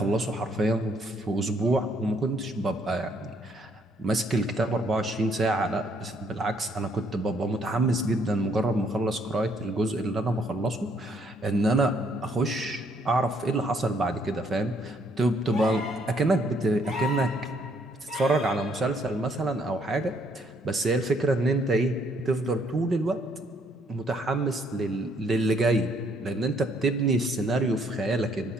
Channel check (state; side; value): normal; both; correlation 0.68